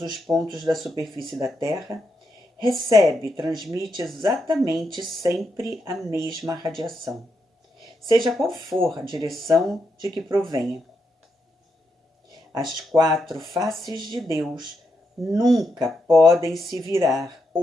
os pontos da superfície da Terra, recebe e transmite exatamente sempre a mesma radiação, seja qual for a direção de que provenha. As 4 faces de Deus nunca podem se virar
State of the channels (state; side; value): normal; both; correlation 0.82